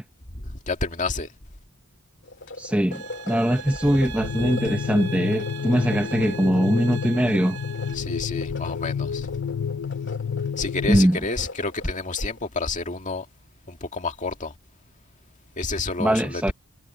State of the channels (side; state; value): both; normal; correlation 0.76